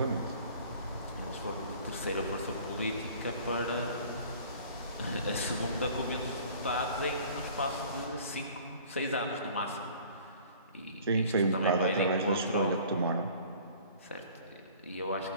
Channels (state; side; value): inverted; both; correlation -0.49